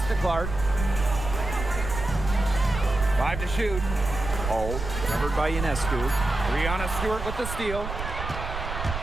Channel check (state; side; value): noise; right; rumble, 7 dB below the sound